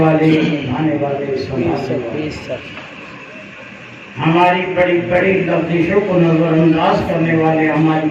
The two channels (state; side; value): identical; both; correlation 1.00